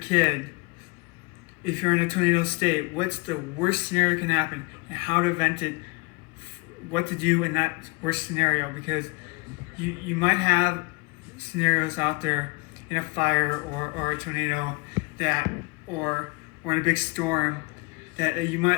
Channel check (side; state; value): right; quieter; 27.6 dB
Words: if you're in a tornado state, what's the worst scenario that can happen and how to vent it, what to do in that worst scenario, because you might have scenarios out there in a fire or a tornado or in a big storm that you